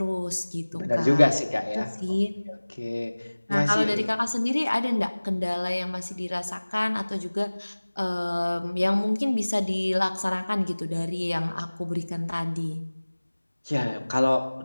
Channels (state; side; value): inverted; both; correlation -1.00